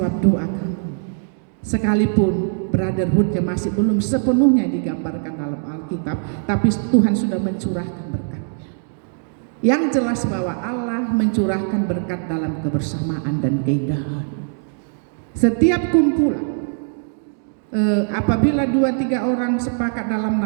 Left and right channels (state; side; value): silent; left; digital silence